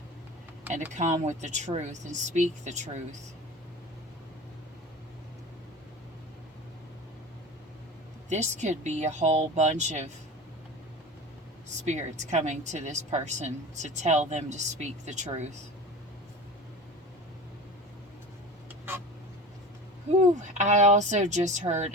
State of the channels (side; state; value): both; normal; correlation 0.34